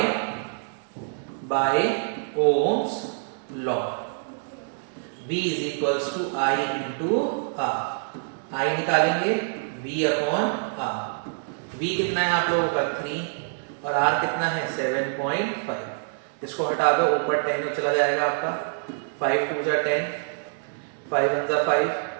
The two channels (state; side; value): silent; left; digital silence